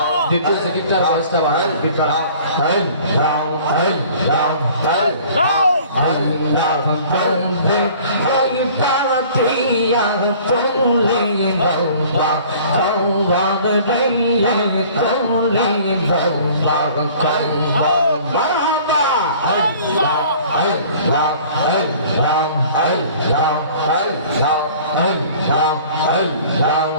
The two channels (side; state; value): both; inverted; correlation -0.49